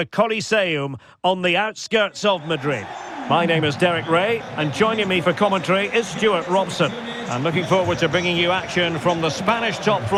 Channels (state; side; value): identical; both; correlation 1.00